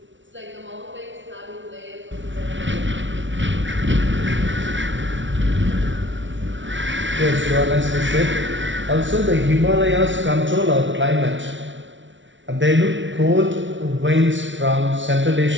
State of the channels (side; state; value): left; late; 0.55 ms